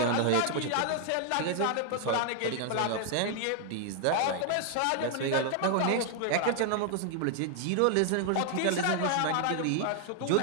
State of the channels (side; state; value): both; different; correlation 0.00